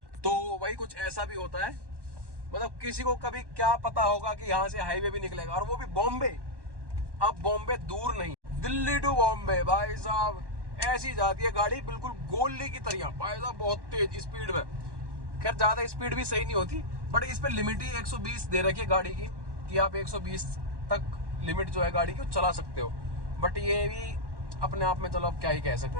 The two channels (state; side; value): late; left; 1.1 ms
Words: तो वही कुछ ऐसा भी होता है, मतलब किसी को कभी क्या पता होगा कि यहाँ से हाईवे भी निकलेगा, और वो भी बॉम्बे। अब बॉम्बे दूर नहीं, दिल्ली टू बॉम्बे भाई साहब ऐसी जाती है गाड़ी, बिल्कुल गोली की तरह भाई साहब, बहुत तेज स्पीड में। खैर ज्यादा स्पीड भी सही नहीं होती, बट इस पे लिमिट ही 120 दे रखी है गाड़ी की, कि आप 120 तक लिमिट जो है गाड़ी की चला सकते हो। बट ये भी अपने आप में चलो अब क्या ही कह सकते